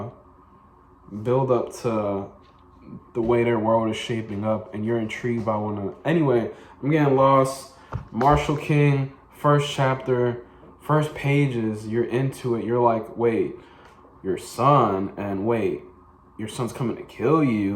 build up to the way their world is shaping up, and you're intrigued by one of them. Anyway, I'm getting lost. Marshal King, first chapter, first pages, you're into it. You're like, wait, your son, and wait, your son's coming to kill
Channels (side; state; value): both; identical; correlation 1.00